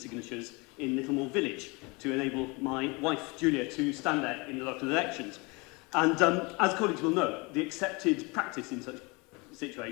in Littlemore Village to enable my wife, Julia, to stand there in the local elections. And as colleagues will know, the accepted practice in such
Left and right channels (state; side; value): quieter; right; 27.5 dB